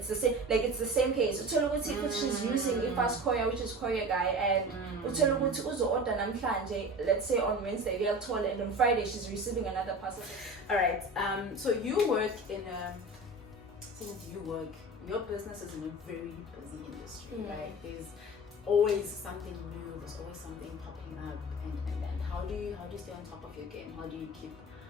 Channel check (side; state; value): both; normal; correlation 0.33